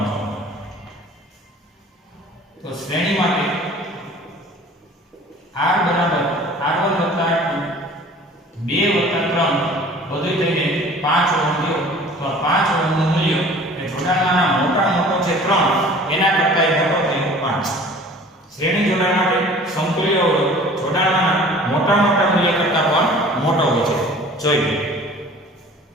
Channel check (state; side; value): normal; both; correlation 0.47